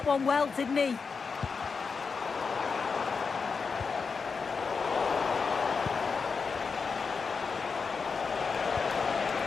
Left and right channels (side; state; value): right; quieter; 5.2 dB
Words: one well, didn't he?